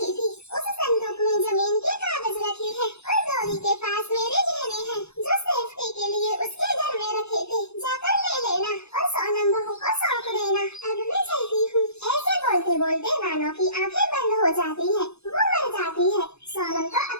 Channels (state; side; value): late; right; 0.80 ms